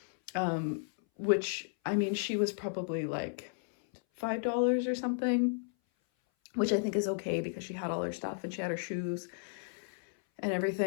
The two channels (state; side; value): silent; right; 55 dB below the other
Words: which, I mean, she was probably like $5 or something, which I think is okay because she had all her stuff and she had her shoes and